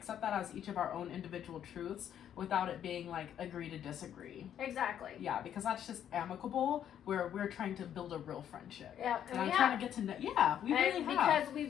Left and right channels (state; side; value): quieter; right; 9.8 dB